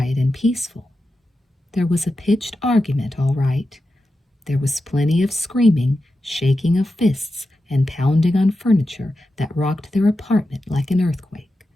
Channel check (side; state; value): both; normal; correlation 0.91